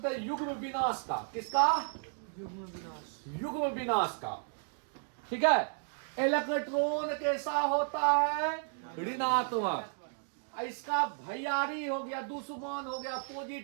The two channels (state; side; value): silent; left; 55 dB below the other